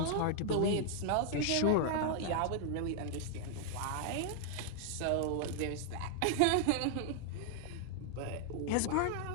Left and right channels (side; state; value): both; different; correlation 0.00